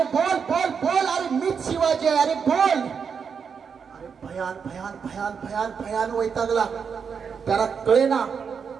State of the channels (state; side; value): quieter; left; 6.3 dB